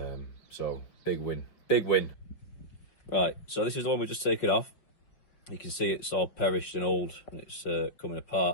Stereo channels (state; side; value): late; right; 5.5 ms